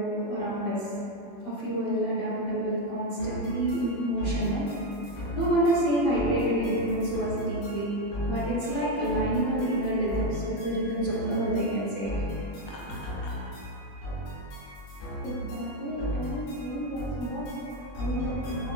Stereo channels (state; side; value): late; right; 21 ms